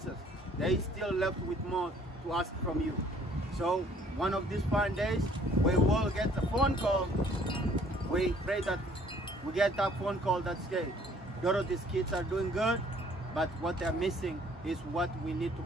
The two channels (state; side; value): normal; both; correlation 0.59